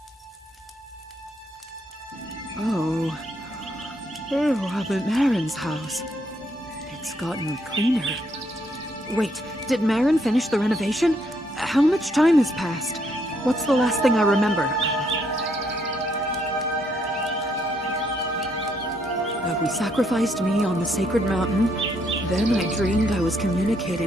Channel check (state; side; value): normal; both; correlation 0.72